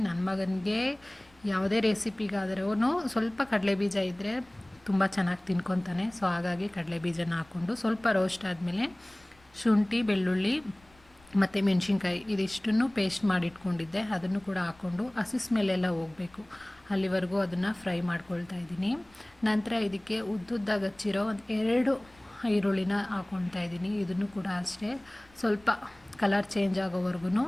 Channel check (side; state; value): left; noise; rumble, 29 dB below the sound